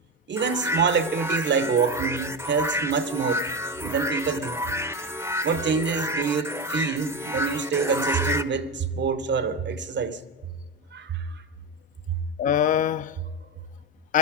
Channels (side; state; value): both; normal; correlation 0.16